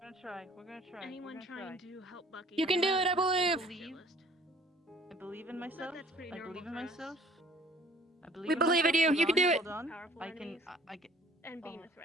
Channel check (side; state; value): both; normal; correlation 0.54